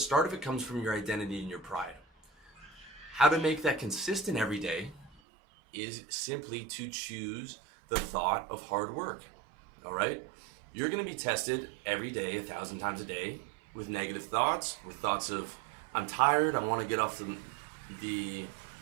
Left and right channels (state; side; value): drops out; left; at 5.2 s